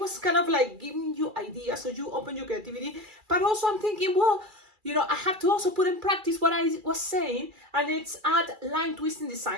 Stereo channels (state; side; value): late; left; 2.3 ms